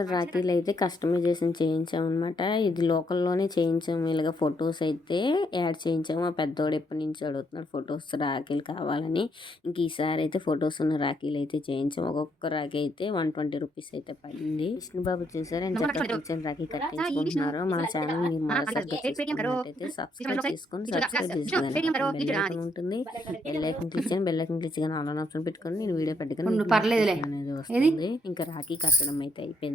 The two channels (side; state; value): both; normal; correlation 0.73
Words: రాఖీలు అయితే కస్టమైజేషన్ చేయించాము అనమాట. ఇది లోకల్లోనే చేయించాము. ఇలాగ ఫొటోస్ అయితే యాడ్ చేయించాము. ఆ పెద్దోడు ఎప్పటి నుంచి అడుగుతున్నాడు ఫొటోస్ రాఖీలు కావాలని. ఇంక ఈసారి అయితే ఫొటోస్ ఉన్న రాఖీలు అయితే చేయించాము. ఒక్కొక్క రాఖీ అయితే 120 rupees అయితే పడింది. విష్ణుబాబు చూసారు ఎంత చక్కగా కూర్చొని రాఖీ కట్టించుకుంటున్నారు. మన ఛానల్ మీరు సబ్స్క్రైబ్ చేసుకొని ఉంటుంది. బెల్ ఐకాన్ క్లిక్ చేయండి. బెల్ ఐకాన్ క్లిక్ చేయగానే ఆల్ ఆప్షన్ పెట్టుకొని నేను వీడియో పెట్టుకొని అనేది వస్తుంది. ఇంకా రాఖీ కట్టడం అయితే